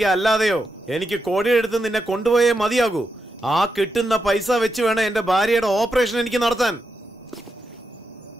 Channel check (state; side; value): normal; both; correlation 0.85